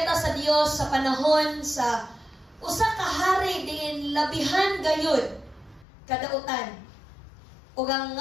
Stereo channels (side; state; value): right; drops out; at 5.9 s